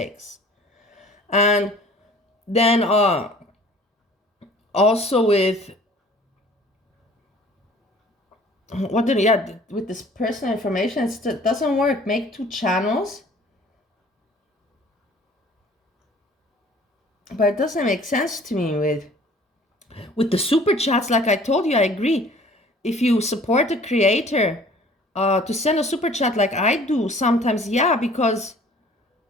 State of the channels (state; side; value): normal; both; correlation 0.51